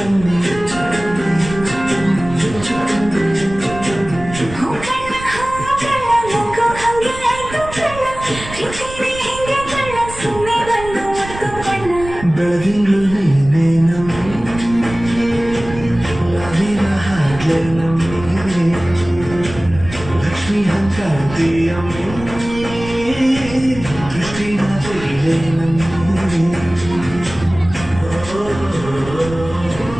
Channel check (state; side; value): noise; right; rumble, 13 dB below the sound